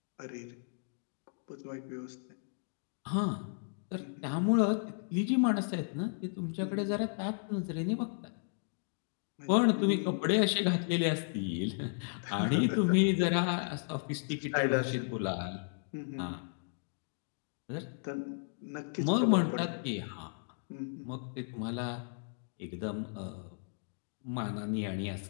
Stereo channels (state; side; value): silent; right; digital silence